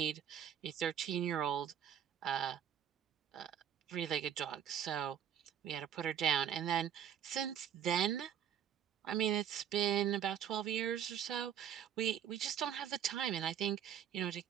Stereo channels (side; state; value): left; quieter; 9.3 dB